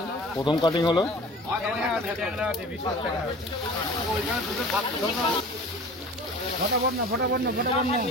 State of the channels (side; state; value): both; normal; correlation 0.42